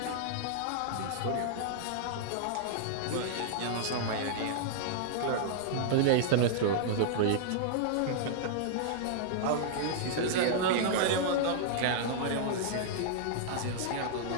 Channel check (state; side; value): different; both; correlation -0.01